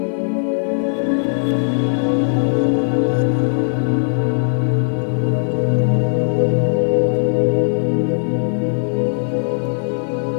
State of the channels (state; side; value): silent; right; 57 dB below the other